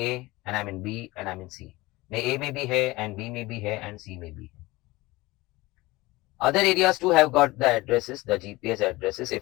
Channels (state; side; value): quieter; right; 20.6 dB